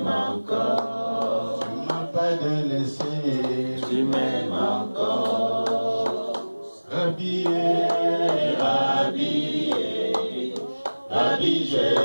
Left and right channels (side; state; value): both; inverted; correlation -1.00